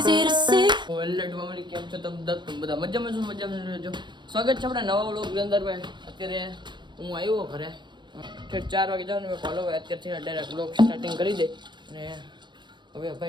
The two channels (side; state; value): left; late; 0.22 ms